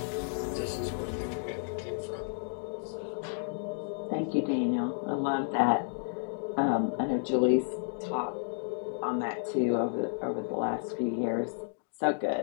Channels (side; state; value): right; silent; digital silence